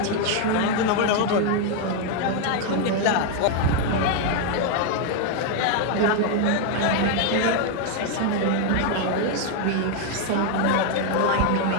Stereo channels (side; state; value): both; different; correlation 0.01